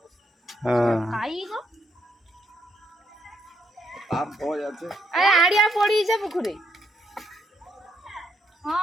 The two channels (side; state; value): both; normal; correlation 0.75